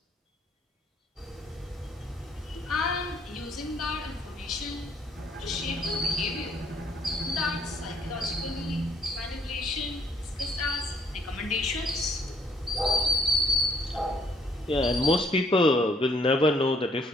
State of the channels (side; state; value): both; normal; correlation 0.65